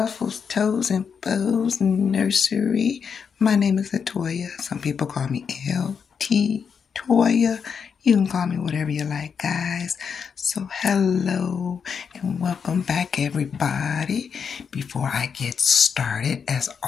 Toes, and Bows Nursery. My name is Latoya. Some people call me LT Toya. You can call me whatever you like, guys. So hello and welcome back, everybody. Before I get started, as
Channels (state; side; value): quieter; right; 6.5 dB